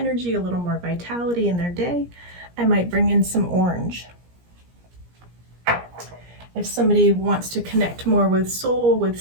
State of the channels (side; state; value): left; late; 17 ms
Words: a little more vitality in their day, I might bring in some orange. If somebody wants to connect more with soul, with